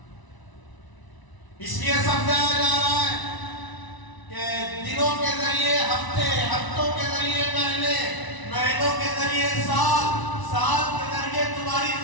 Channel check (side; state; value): right; late; 1.0 ms